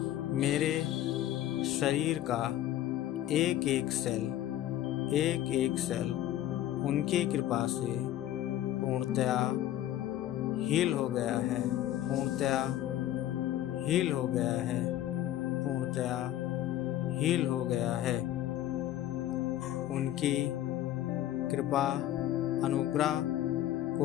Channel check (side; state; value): right; quieter; 13.0 dB